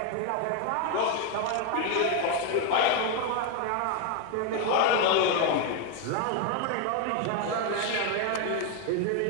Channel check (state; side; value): different; both; correlation 0.01